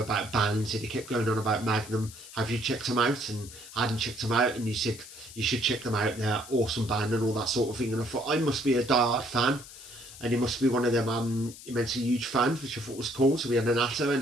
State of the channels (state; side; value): noise; left; hiss, 16 dB below the sound